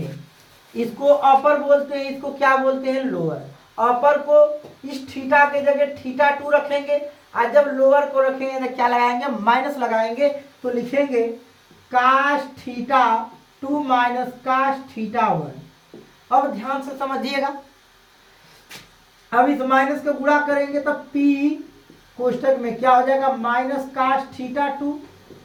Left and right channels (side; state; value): both; identical; correlation 1.00